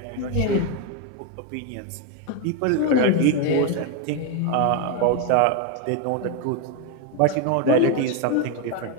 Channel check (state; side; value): different; both; correlation 0.02